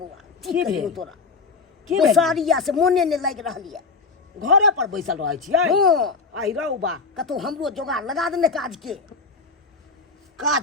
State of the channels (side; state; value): right; quieter; 4.4 dB